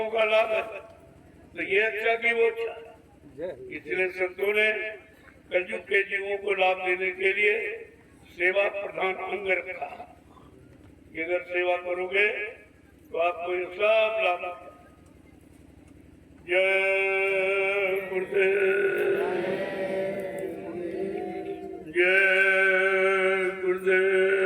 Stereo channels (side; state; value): both; identical; correlation 1.00